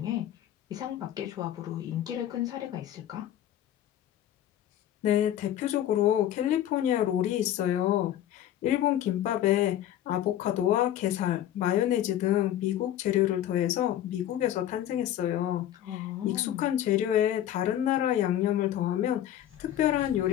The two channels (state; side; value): quieter; right; 11.8 dB